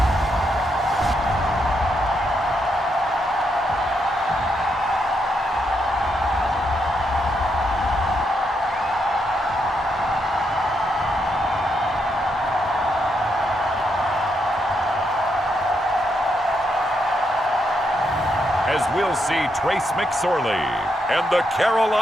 As we'll see Trace McSorley and the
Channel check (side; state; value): both; normal; correlation 0.80